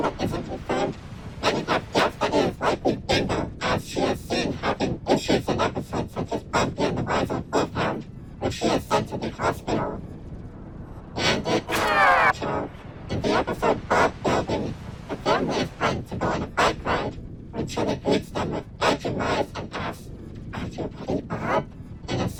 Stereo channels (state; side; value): identical; both; correlation 1.00